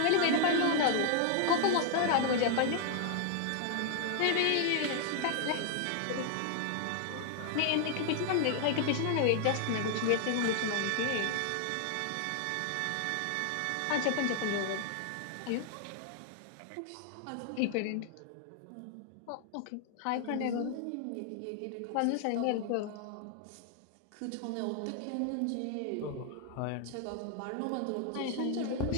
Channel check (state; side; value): different; both; correlation 0.00